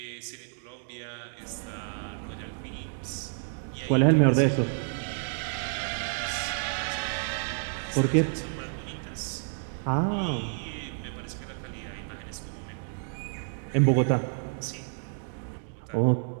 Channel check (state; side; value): silent; left; 55 dB below the other